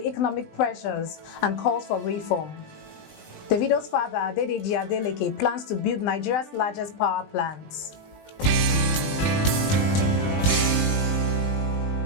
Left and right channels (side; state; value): right; late; 20 ms